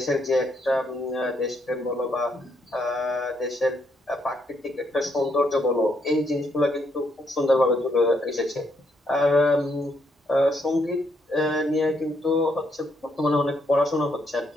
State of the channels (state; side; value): normal; both; correlation 0.74